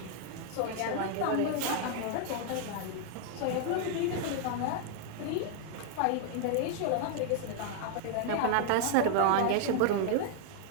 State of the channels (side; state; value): both; different; correlation 0.00